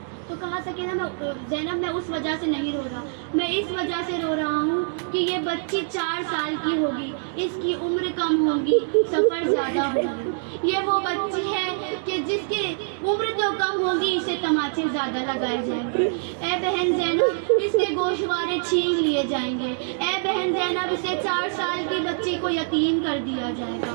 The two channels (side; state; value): left; silent; digital silence